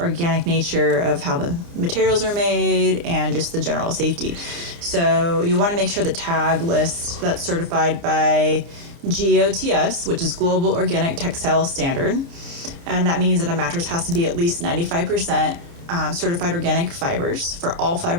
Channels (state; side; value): late; left; 29 ms